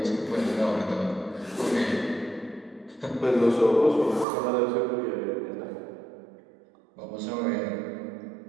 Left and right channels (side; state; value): left; drops out; at 4.2 s